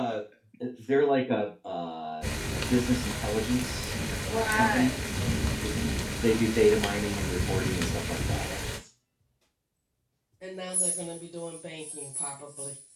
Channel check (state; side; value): identical; both; correlation 1.00